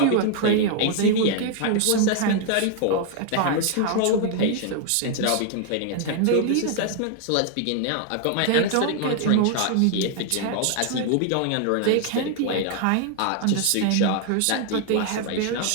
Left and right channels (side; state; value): both; different; correlation 0.00